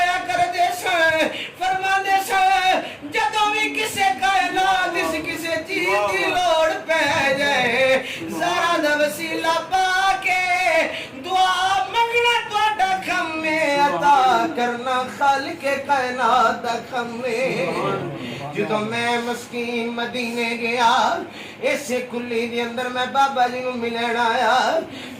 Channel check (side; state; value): both; identical; correlation 1.00